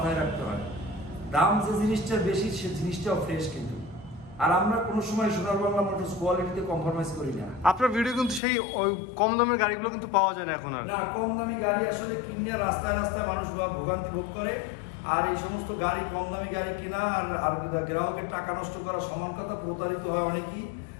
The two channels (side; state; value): right; drops out; at 8.4 s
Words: রাখতে হয়। দাম যে জিনিসটার বেশি, সে জিনিসটাও ফ্রেশ কিন্তু। আর আমরা কোনো সময় সোনার বাংলা মোটরস কোয়ালিটিতে কম্প্রোমাইজ করি না। আপনার ভিডিও কিন্তু সেই ওই কম দামের গাড়িগুলো কিন্তু পাওয়া যায় না এখন আর। না, কম দামি গাড়ি আসলে কিনে রাস্তায় রাস্তায় মানুষ ভোগান্তি ভোগ করে। আর এই সমস্ত গাড়ি, কম দামি গাড়ি কেনা আর গ্রাহকের টাকা নষ্ট করা সমান কথা। প্রতারিত হয় অনেকেই।